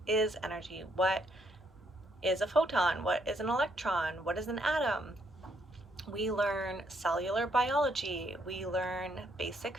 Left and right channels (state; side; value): normal; both; correlation 0.72